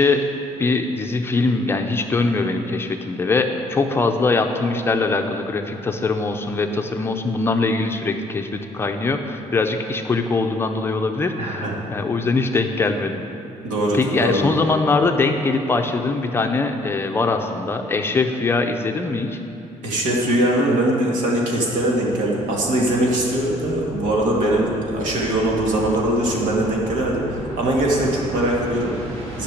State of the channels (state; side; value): normal; both; correlation 0.60